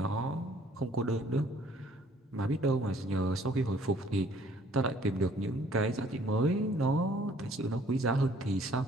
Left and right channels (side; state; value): both; normal; correlation 0.59